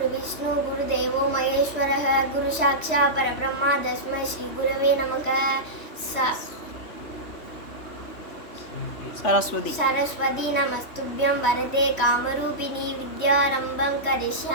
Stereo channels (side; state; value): right; late; 3.2 ms